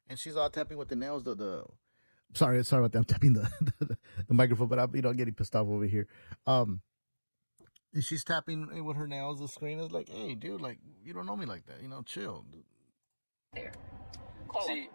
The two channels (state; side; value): inverted; both; correlation -1.00